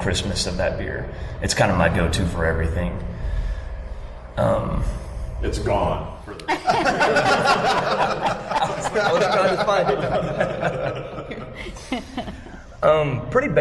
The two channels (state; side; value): identical; both; correlation 1.00